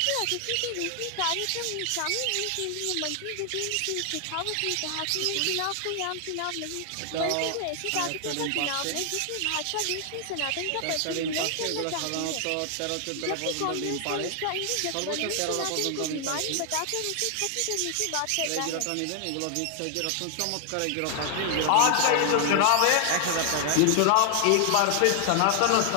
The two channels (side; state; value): both; different; correlation 0.00